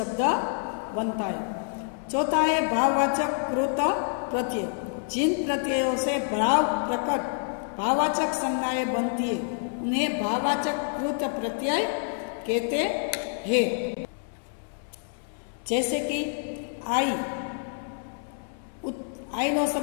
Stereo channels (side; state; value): right; silent; 60 dB below the other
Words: बनता है। चौथा है भाववाचक कृत प्रत्यय, जिन प्रत्ययों से भाव प्रकट भाववाचक संज्ञाएं बनती है उन्हें भाववाचक कृत प्रत्यय कहते हैं। जैसे कि आई, आई नो